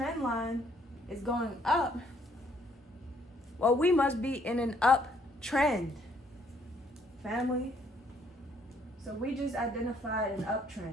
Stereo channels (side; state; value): both; normal; correlation 0.66